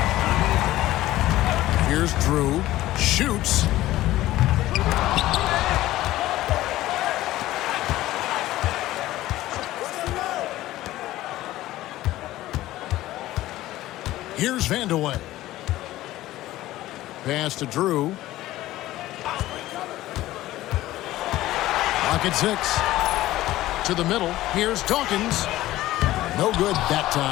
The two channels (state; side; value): quieter; right; 15.8 dB